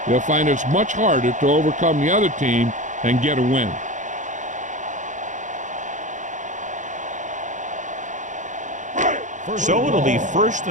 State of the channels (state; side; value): late; left; 0.36 ms